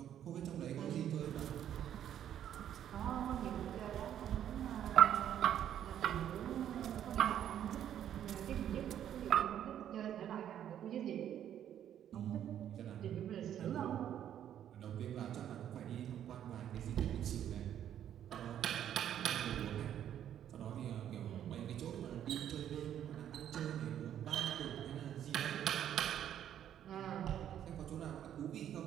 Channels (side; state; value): left; quieter; 10.3 dB